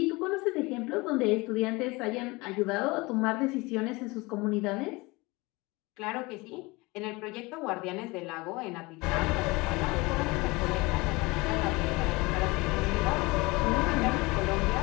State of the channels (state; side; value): quieter; right; 23.9 dB